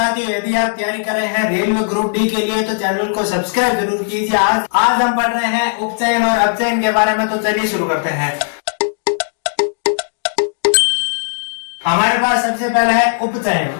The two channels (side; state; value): right; silent; 68 dB below the other